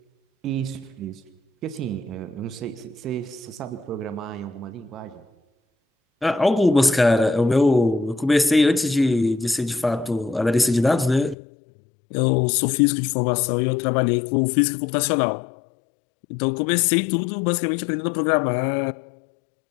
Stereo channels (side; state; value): right; drops out; at 11.4 s